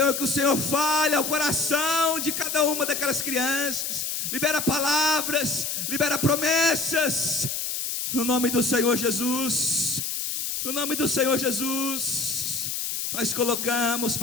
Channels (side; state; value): left; noise; hiss, 2 dB below the sound